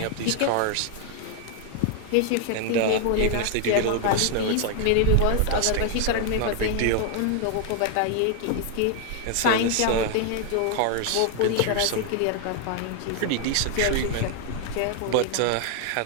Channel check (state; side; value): different; both; correlation 0.00